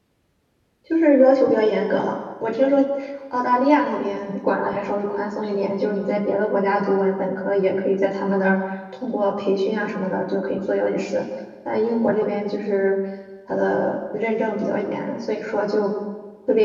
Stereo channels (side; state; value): both; identical; correlation 1.00